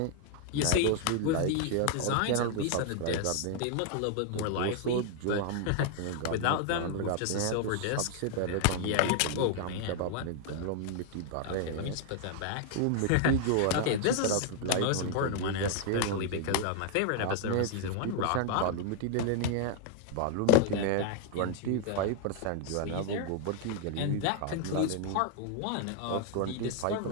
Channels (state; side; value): different; both; correlation 0.00